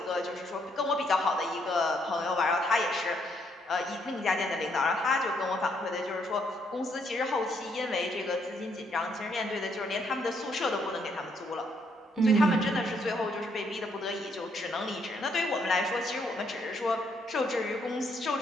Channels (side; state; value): both; normal; correlation 0.72